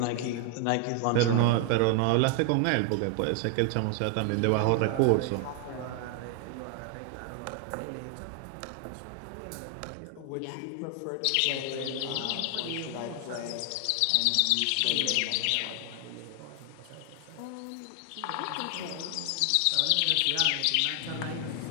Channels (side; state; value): both; different; correlation 0.00